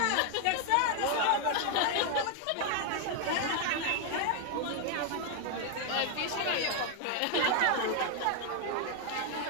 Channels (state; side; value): different; both; correlation 0.00